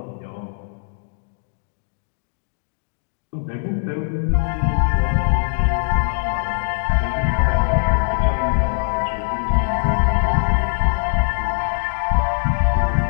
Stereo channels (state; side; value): silent; right; digital silence